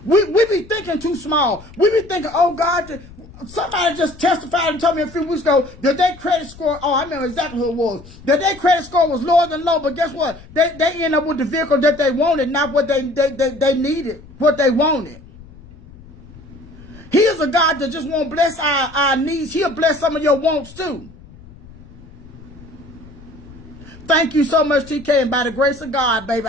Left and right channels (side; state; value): left; noise; rumble, 20 dB below the sound